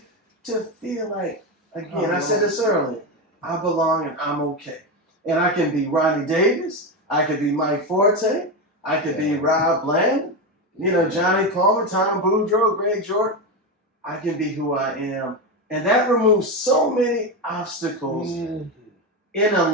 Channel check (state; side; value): normal; both; correlation 0.14